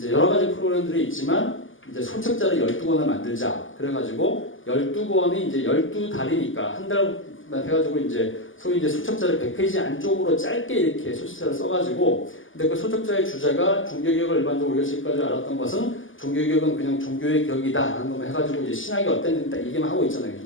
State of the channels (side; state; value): right; late; 0.58 ms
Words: 여러 가지 프로그램들이 있지만 이제 소책자를 12권을 만들자. 그래가지고 12권이 이제 12달이니까 한 달만 해가지고 이제 소위 이제 소책자를 100페이지 안쪽으로 짧게 이렇게 소책자를 써가지고, 근데 그 소책자의 주제가 종교개혁을 일반적으로 우리가 지금까지 알았던 것은 종교개혁은 그냥 종교의 격이다 하는 것만 해가지고 이제 신학이 어땠는지 딱 얘기만 하고 있잖아요.